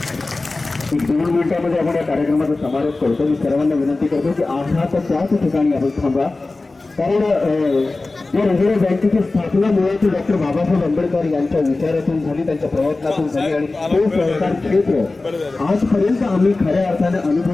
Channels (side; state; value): right; quieter; 3.3 dB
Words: 2 मिनिटांमध्ये आपण या कार्यक्रमाचा समारोप करतो. मी सर्वांना विनंती करतो की आहात त्याच ठिकाणी आपण थांबा, कारण या रिझर्व्ह बँकेची स्थापना मुळात डॉक्टर बाबासाहेब आंबेडकर यांच्या विचारातून झाली, त्यांच्या प्रयत्नातून झाली. आणि तो सहकार क्षेत्र आजपर्यंत आम्ही खऱ्या अर्थाने